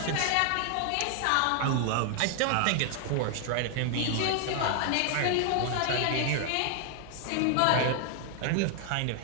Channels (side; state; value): both; different; correlation 0.00